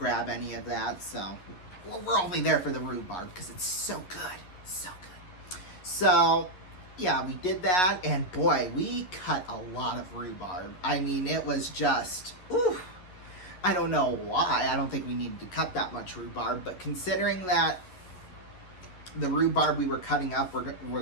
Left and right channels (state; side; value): late; right; 11 ms